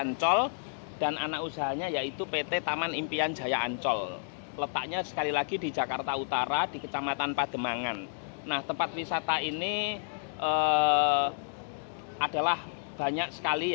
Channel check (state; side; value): silent; right; digital silence